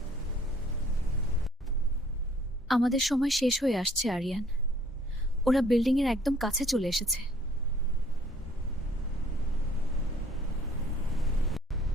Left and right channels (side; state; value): both; normal; correlation 0.58